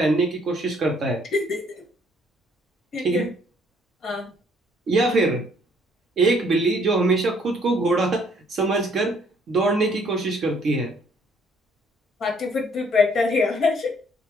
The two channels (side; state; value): both; normal; correlation 0.63